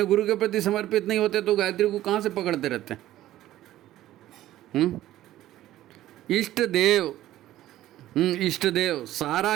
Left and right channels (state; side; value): quieter; left; 14.2 dB